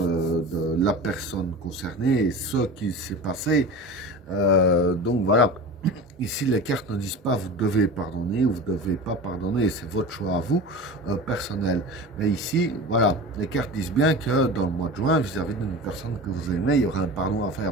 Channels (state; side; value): normal; both; correlation 0.32